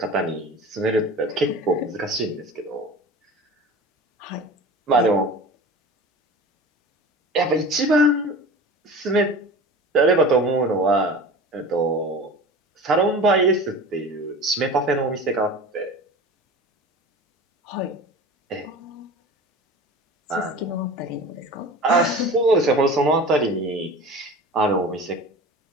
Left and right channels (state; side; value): normal; both; correlation 0.36